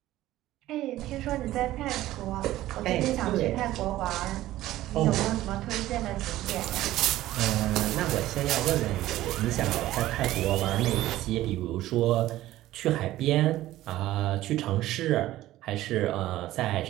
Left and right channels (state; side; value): quieter; left; 15.2 dB